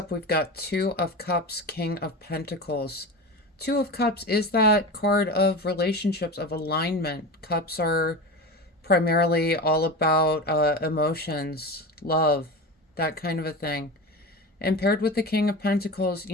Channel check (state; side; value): normal; both; correlation 0.27